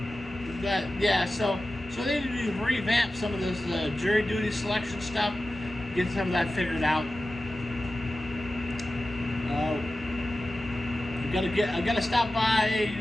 So they need to revamp some of this jury duty selection stuff, get some of that figured out. I gotta stop by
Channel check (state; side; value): normal; both; correlation 0.94